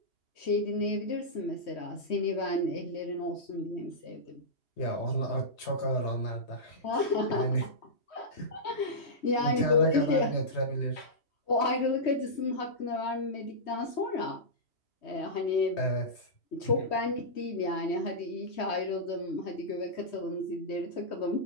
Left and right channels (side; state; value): right; late; 3.2 ms